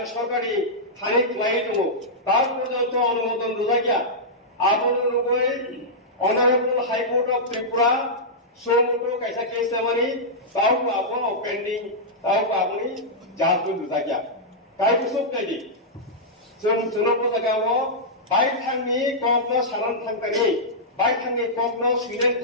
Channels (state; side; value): normal; both; correlation -0.10